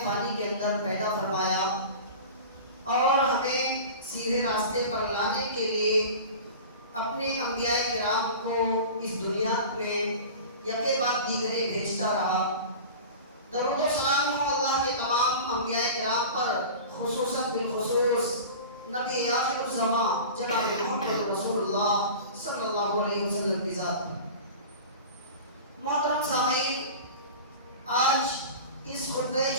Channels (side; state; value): both; inverted; correlation -0.35